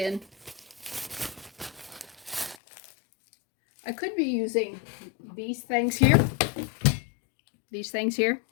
I could be using these things here,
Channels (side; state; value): right; drops out; at 2.6 s